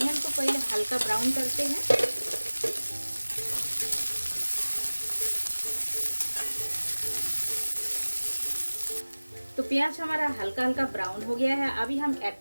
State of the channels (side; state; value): both; inverted; correlation -1.00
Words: को पहले हल्का ब्राउन करते हैं। तो प्याज हमारा हल्का हल्का ब्राउन हो गया है। अभी हम ऐड